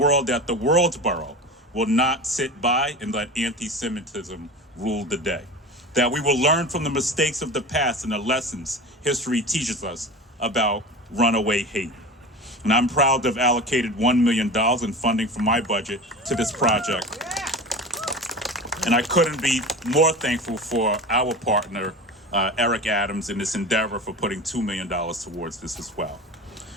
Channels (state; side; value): normal; both; correlation 0.31